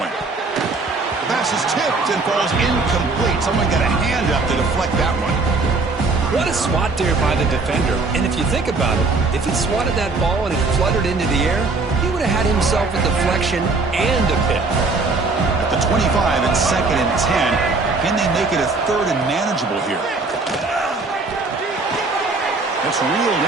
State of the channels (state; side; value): quieter; left; 3.8 dB